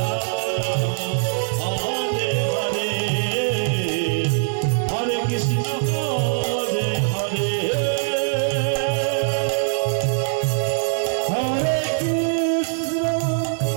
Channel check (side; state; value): left; silent; digital silence